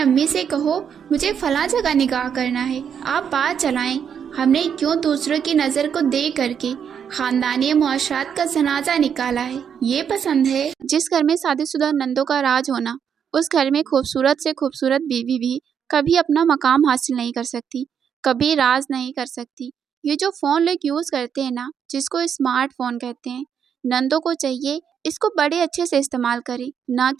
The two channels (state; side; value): quieter; left; 7.8 dB